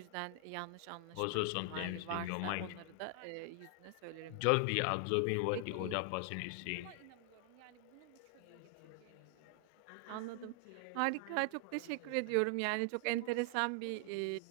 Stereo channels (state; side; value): different; both; correlation 0.00